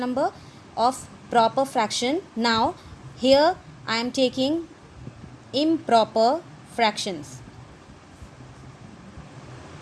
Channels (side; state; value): both; identical; correlation 1.00